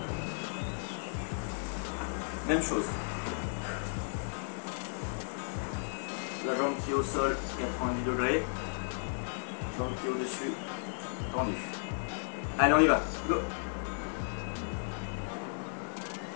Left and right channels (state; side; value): silent; right; digital silence